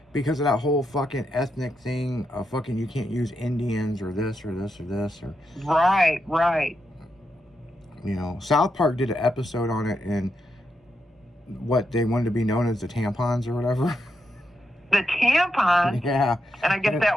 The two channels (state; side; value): normal; both; correlation 0.84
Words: because of that whole fucking ethnic thing of fucking you can't use Indians or this or this or this. Or Right. You know, South Park did an episode on it, and what they wanted to be known as the tampons or whatever. The tampon? Yeah. And I guess that